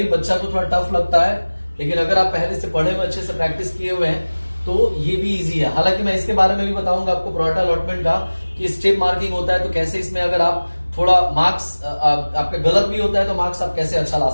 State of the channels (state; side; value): inverted; both; correlation -1.00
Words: बच्चा को थोड़ा टफ लगता है, लेकिन अगर आप पहले से पढ़े हुए, अच्छे से प्रैक्टिस किए हुए हैं तो ये भी इजी है। हालांकि मैं इसके बारे में भी बताऊंगा आपको, प्रोराटा अलॉटमेंट का, कि स्टेप मार्किंग होता है तो कैसे इसमें अगर आप थोड़ा मार्क्स आपका गलत भी होता है तो मार्क्स आप कैसे अच्छा ला